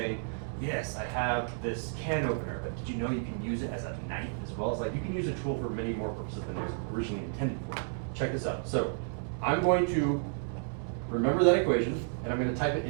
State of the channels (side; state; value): left; silent; digital silence